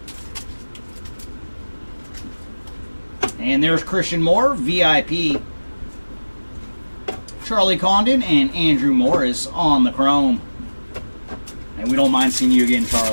And there's Christian Moore, VIP. Charlie Condon and Andrew Morris on the Chrome. And we don't mind seeing you again,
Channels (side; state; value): both; inverted; correlation -1.00